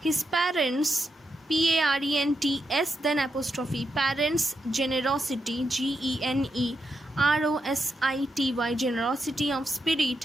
parents, PARENTS, then apostrophe, parents' generosity, GENEROSITY, generosity of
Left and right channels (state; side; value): normal; both; correlation 0.84